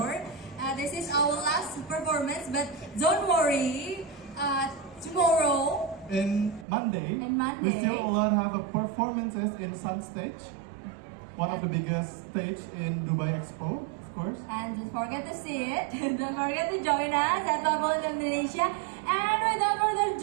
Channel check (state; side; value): drops out; left; at 6.7 s